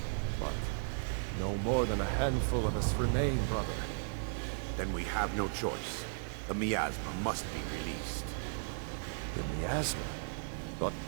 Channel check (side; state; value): left; silent; digital silence